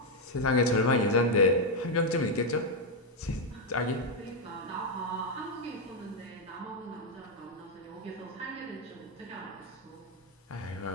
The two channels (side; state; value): both; normal; correlation 0.02